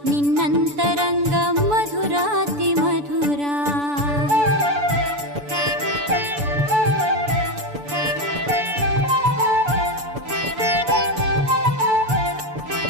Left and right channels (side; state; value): left; late; 6.9 ms